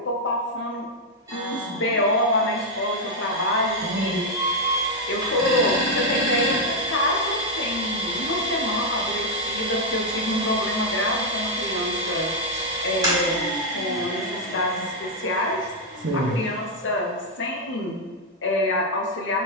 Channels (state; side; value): normal; both; correlation 0.00